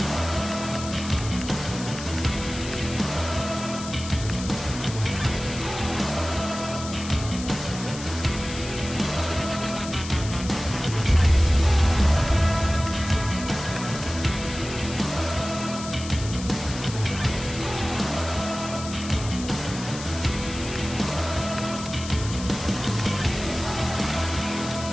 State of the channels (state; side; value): noise; left; hiss, 11 dB below the sound